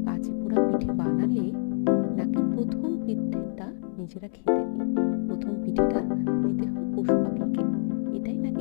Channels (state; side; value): silent; right; digital silence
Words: কাঁচি পোড়া পিঠে বানালে নাকি প্রথম পিঠেটা নিজেরা খেতে নেই, প্রথম পিঠেটা দিতে হয় পশু পাখিকে, এটাই